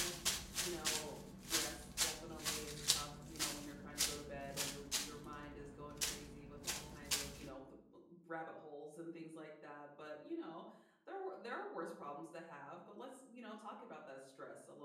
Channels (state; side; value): identical; both; correlation 1.00